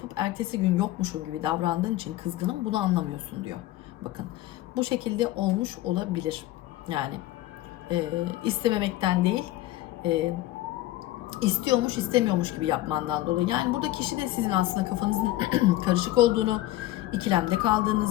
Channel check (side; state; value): right; quieter; 15.9 dB